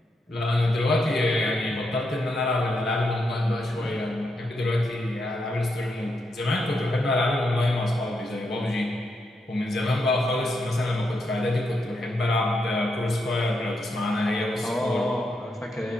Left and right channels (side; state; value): both; normal; correlation 0.82